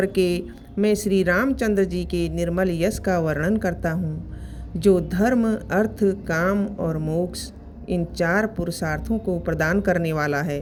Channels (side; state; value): both; identical; correlation 1.00